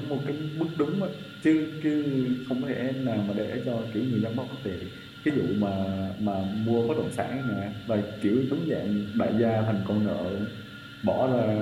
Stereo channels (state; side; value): identical; both; correlation 1.00